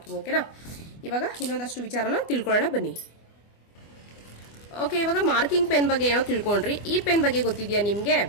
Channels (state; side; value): late; right; 24 ms